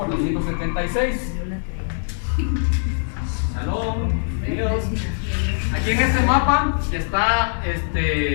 Salud, bienvenidos. Aquí en este mapa está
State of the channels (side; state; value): right; silent; 61 dB below the other